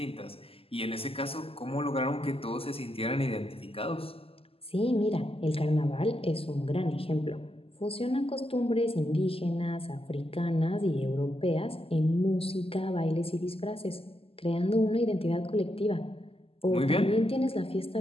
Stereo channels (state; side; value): late; right; 0.28 ms